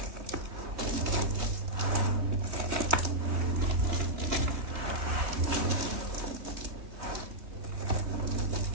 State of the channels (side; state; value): left; late; 3.2 ms